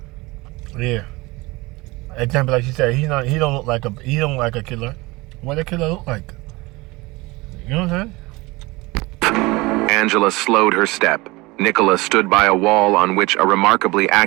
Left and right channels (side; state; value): left; quieter; 22.8 dB